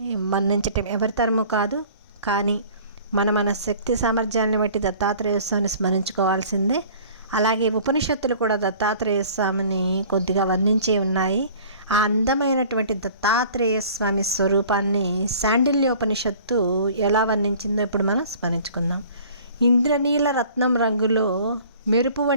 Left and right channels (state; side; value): inverted; both; correlation -0.48